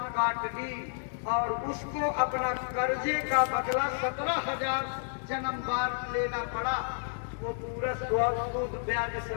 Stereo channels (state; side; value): silent; right; 57 dB below the other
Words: काट ली और उसको अपना कर्जे का बदला 17,000 जन्म बाद लेना पड़ा, वो पूरा सूद ब्याज